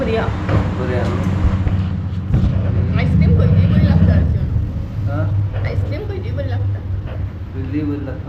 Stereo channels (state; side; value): identical; both; correlation 1.00